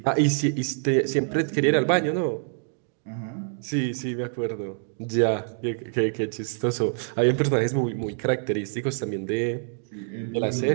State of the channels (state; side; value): silent; left; 61 dB below the other